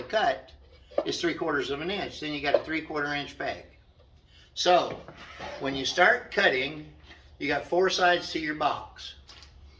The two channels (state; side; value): identical; both; correlation 1.00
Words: cut is 3/4 of an inch. Then you got a 3/4 inch peg. So when you start cutting, you got 4 sides to your box.